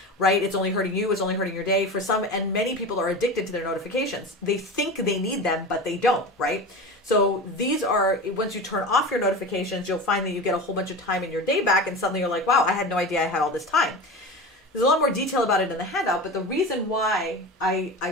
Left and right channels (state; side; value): normal; both; correlation 0.29